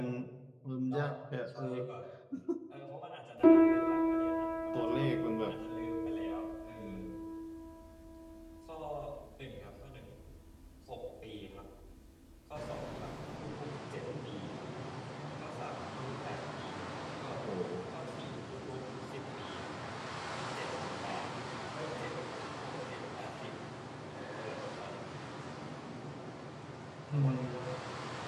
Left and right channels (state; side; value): identical; both; correlation 1.00